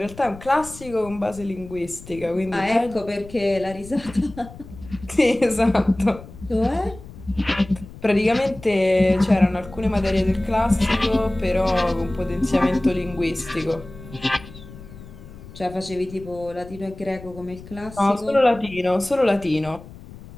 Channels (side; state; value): left; noise; rumble, 17 dB below the sound